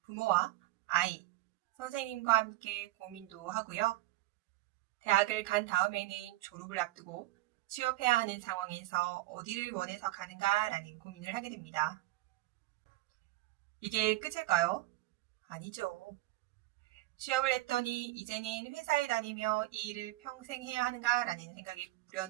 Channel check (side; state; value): left; quieter; 17.7 dB